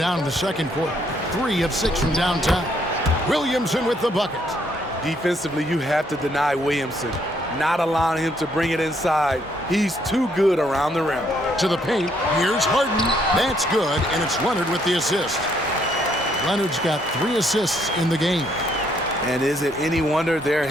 in the second quarter. 3 of 6 from downtown. Williamson with the bucket. Defensively, you have to deny Williamson, not allowing him to bring it inside. He's too good around the rim. To the paint. Here's Harden. That's good, and it's Leonard with the assist. Leonard's got 3 assists in the game. And is it any wonder they're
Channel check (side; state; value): both; normal; correlation 0.70